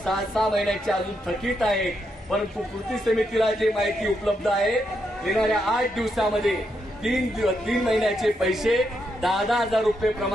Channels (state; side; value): normal; both; correlation 0.81